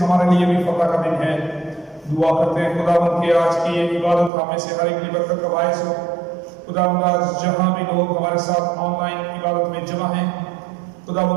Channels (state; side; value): drops out; left; at 4.3 s